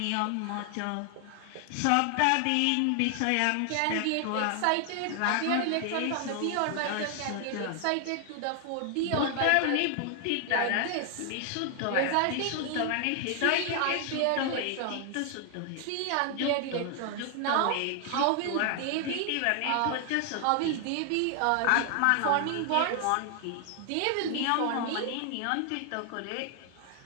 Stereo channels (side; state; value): both; different; correlation 0.00